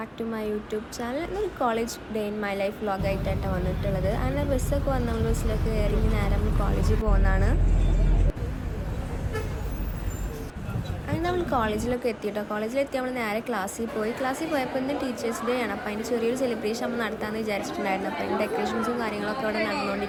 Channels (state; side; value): identical; both; correlation 1.00